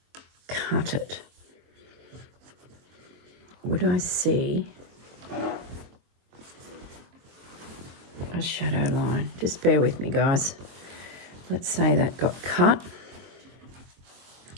cut it. Would I see a shadow line? Just bear with me, guys. Let's say that got cut.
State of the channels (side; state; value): left; late; 23 ms